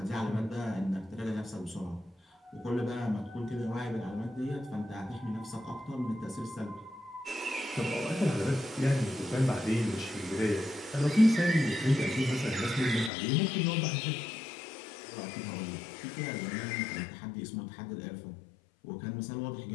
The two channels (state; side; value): drops out; right; at 13.1 s